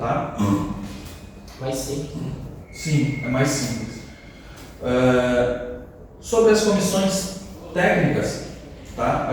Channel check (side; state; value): both; identical; correlation 1.00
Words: Mais simples. Sim, é mais simples. Sobre as comissões técnicas, tá?